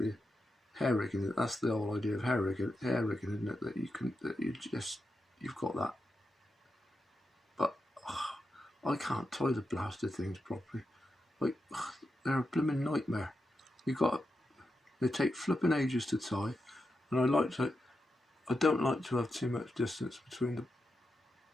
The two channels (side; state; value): both; normal; correlation 0.87